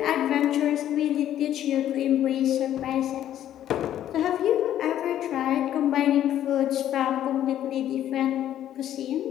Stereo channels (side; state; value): right; quieter; 11.5 dB